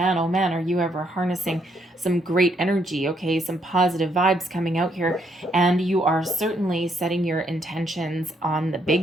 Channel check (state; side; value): normal; both; correlation 0.73